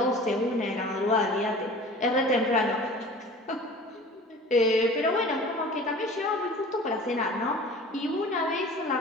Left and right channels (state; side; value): normal; both; correlation 0.42